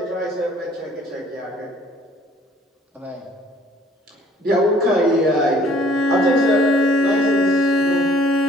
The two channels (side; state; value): both; normal; correlation 0.58